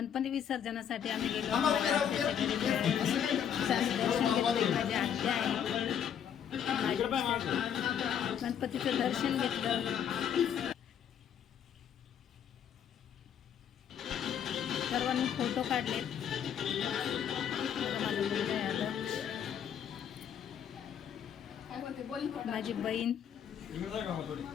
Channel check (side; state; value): right; quieter; 8.7 dB